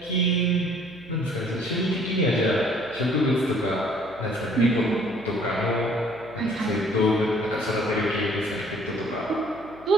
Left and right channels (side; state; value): right; noise; hum, 23 dB below the sound